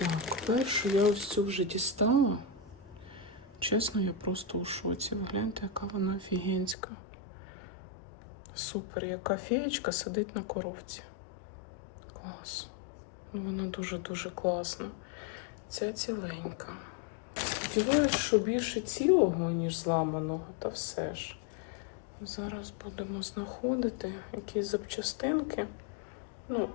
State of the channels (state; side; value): drops out; right; at 6.8 s